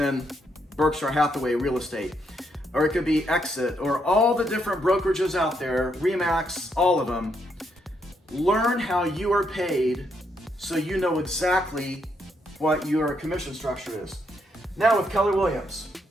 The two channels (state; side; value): normal; both; correlation 0.76